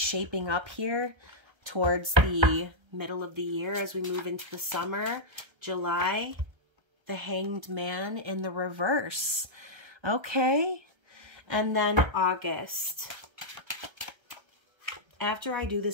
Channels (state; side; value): late; left; 1.3 ms